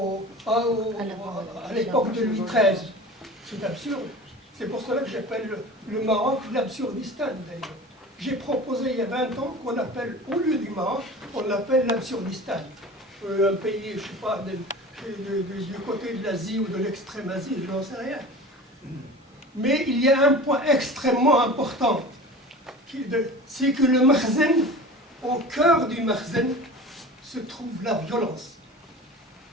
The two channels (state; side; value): normal; both; correlation 0.37